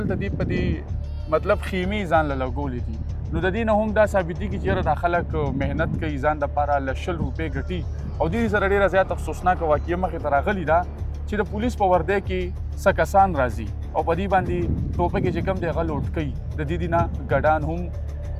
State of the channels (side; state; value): both; identical; correlation 1.00